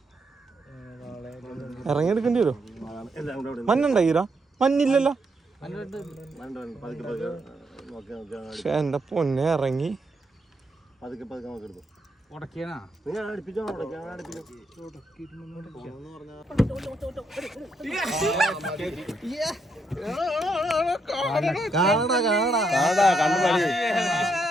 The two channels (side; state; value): both; normal; correlation 0.78